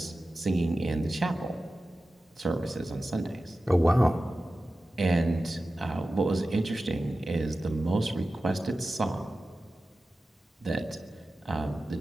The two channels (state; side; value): normal; both; correlation 0.94